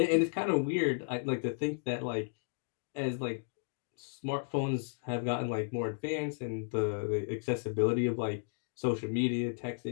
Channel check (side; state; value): right; silent; digital silence